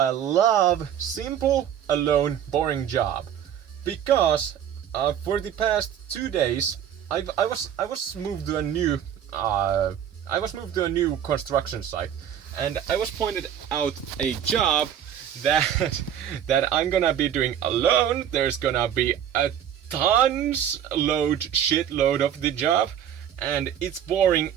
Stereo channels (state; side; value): quieter; left; 9.7 dB